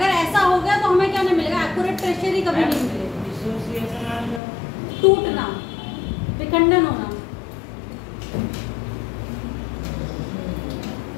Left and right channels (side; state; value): right; drops out; at 4.4 s